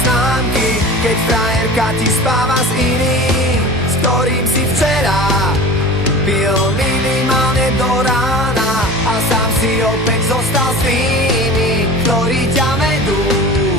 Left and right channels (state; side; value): normal; both; correlation 0.36